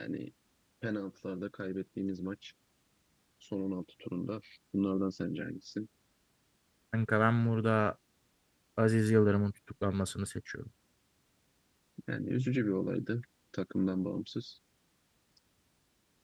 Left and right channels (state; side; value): identical; both; correlation 1.00